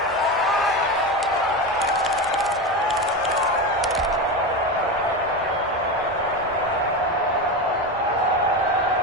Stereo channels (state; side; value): normal; both; correlation 0.19